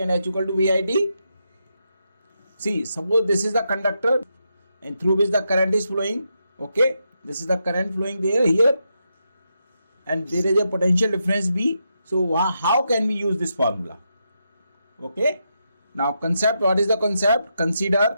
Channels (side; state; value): both; inverted; correlation -0.83